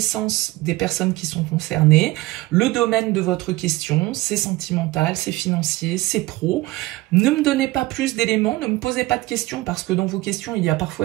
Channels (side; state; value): left; quieter; 19.5 dB